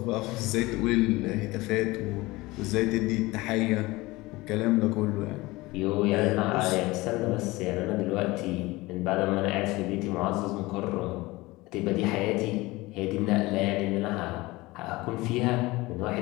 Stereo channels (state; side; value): quieter; right; 20.9 dB